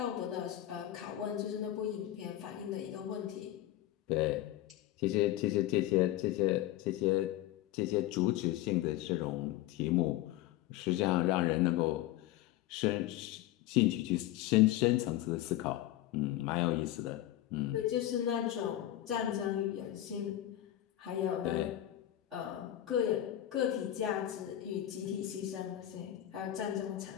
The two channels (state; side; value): quieter; right; 13.8 dB